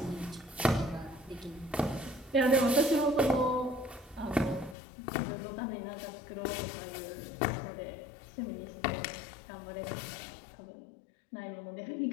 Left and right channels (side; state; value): right; drops out; at 4.8 s